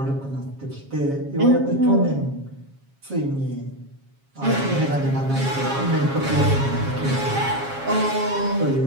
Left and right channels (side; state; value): left; late; 7.3 ms